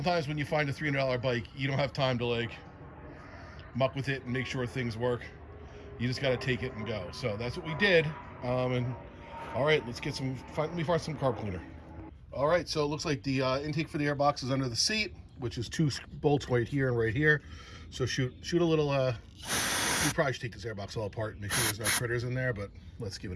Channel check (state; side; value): identical; both; correlation 1.00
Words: when you find a $300 bike, you don't have time to like muck with it and make sure things work. You just got to take it and go. So that's what we did. And all right, let's get let me find some carb cleaner. All right, so it looks like the intake for the airbox is under the seat, which is 2 bolts right here and right here. So shoot a little, we probably should take this airbox all apart and make sure there's no critters in there, but let's give